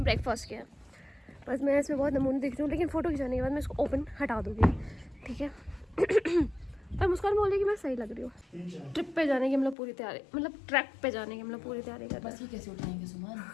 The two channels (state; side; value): drops out; right; at 9.8 s